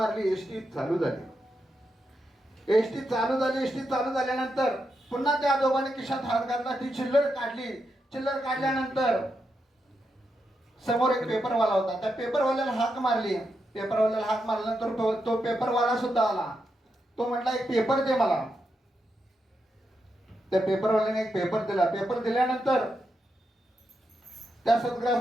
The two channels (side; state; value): both; normal; correlation 0.84